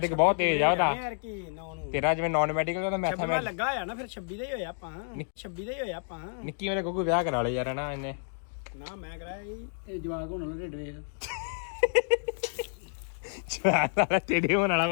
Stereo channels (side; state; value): right; silent; digital silence